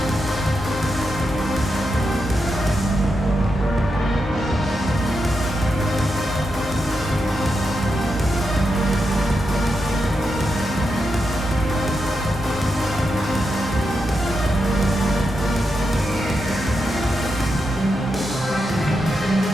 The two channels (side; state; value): both; normal; correlation 0.86